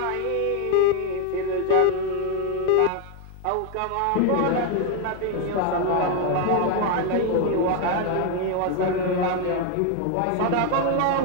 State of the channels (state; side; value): different; both; correlation 0.01